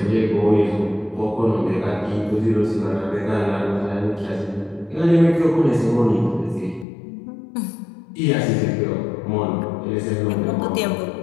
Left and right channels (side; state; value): right; drops out; at 6.9 s